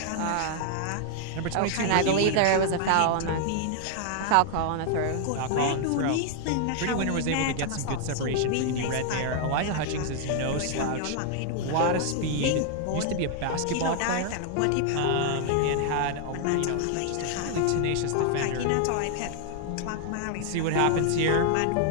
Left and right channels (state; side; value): different; both; correlation 0.00